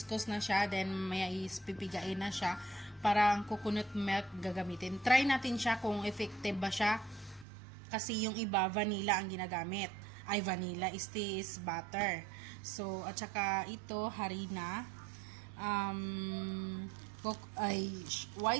na siya, then maya is pipigain na siya para ang coconut milk gagamitin. Try natin siya kung effective ba siya. Kasi yung iba, vanilla ang ginagamit. Ay, vanilla is butter. So, at saka ito, harina.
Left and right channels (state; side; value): drops out; left; at 7.5 s